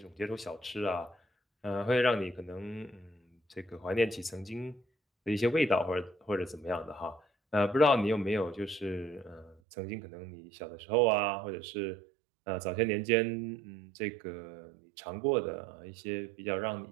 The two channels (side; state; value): left; drops out; at 9.6 s